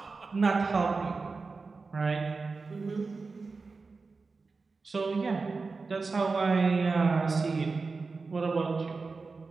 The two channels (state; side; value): quieter; left; 4.2 dB